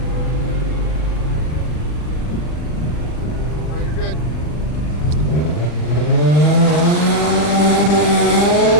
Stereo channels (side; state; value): right; late; 40 ms